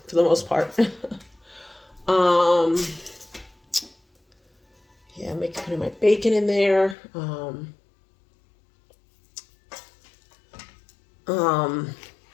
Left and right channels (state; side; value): drops out; right; at 7.0 s